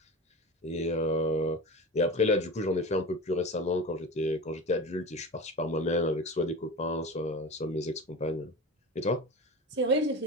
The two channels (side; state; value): both; normal; correlation 0.30